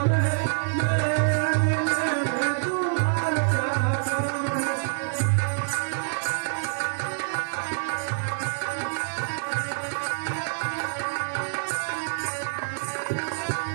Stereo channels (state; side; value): silent; left; digital silence